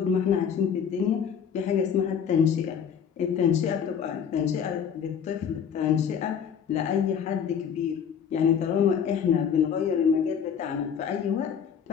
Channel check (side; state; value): right; quieter; 7.6 dB